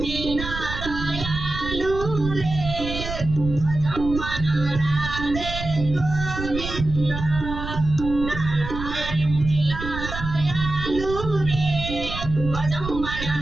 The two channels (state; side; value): noise; right; rumble, 7 dB below the sound